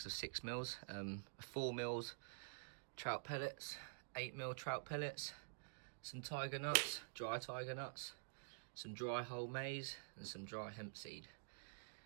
of 6mm, 4mm trout pellets, 8mm trout pellets, some tiger nuts, dry tiger nuts, some dry whole maize, and some dry hemp seed.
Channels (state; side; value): silent; left; digital silence